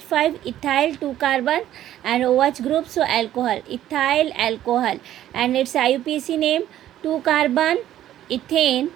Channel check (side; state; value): left; quieter; 12.4 dB